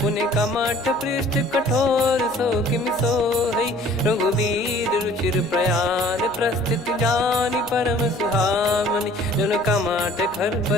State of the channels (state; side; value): noise; right; hum, 27 dB below the sound